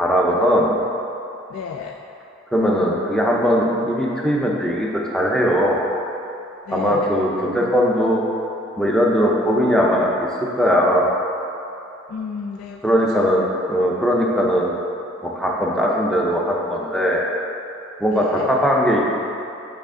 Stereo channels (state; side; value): normal; both; correlation 0.60